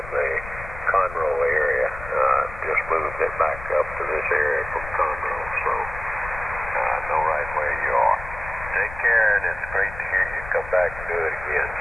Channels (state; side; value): noise; left; rumble, 12 dB below the sound